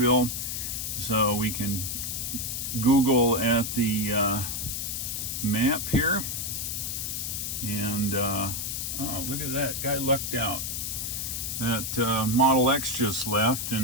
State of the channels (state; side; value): noise; left; hiss, 3 dB below the sound